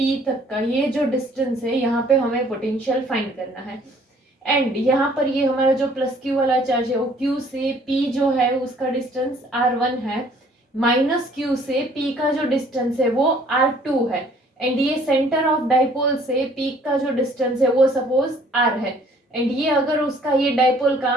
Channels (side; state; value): both; normal; correlation 0.58